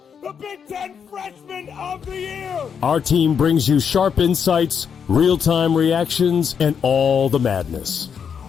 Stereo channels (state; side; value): quieter; right; 7.1 dB